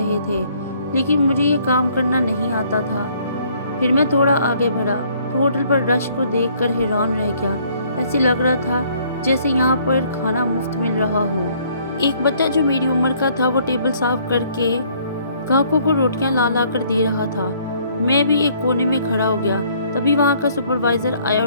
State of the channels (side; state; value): both; inverted; correlation -0.63